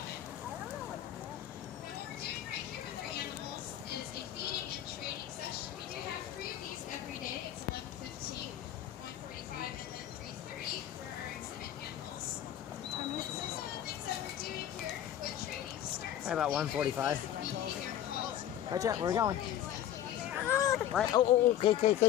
About 1:45. Right, Jet, where are we going? Right. Oh,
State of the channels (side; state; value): right; quieter; 11.3 dB